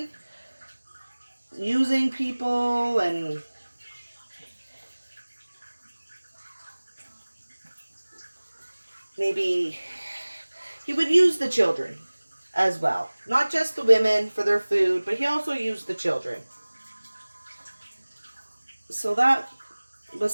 using people, and maybe he would use the children as well. Not just the women for their food, but he also used the children. So that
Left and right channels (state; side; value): inverted; both; correlation -1.00